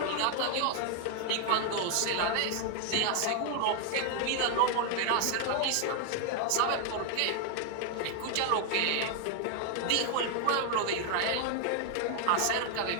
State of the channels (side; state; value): both; different; correlation 0.00